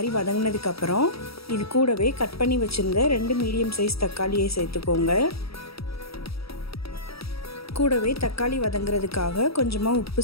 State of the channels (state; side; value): late; right; 0.76 ms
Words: வதங்கினதுக்கப்புறம் இது கூடவே கட் பண்ணி வச்சுருந்த 2 மீடியம் சைஸ் தக்காளியை சேர்த்துக்கோங்க. கூடவே தக்காளி வதங்கிறதுக்காக கொஞ்சமாக உப்பு